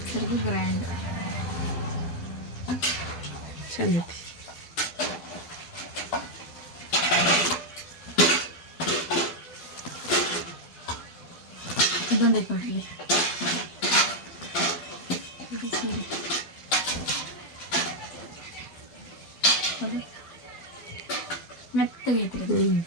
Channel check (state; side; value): late; right; 12 ms